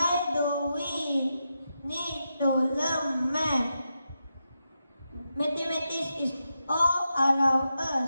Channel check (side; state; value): both; inverted; correlation -0.87